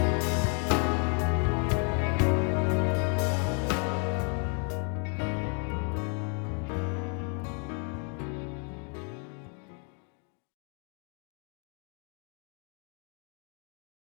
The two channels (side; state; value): right; quieter; 37.5 dB